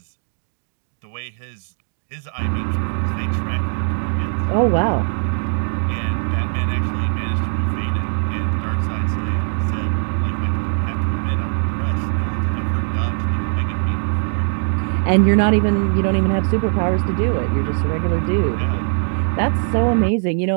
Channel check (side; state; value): left; silent; digital silence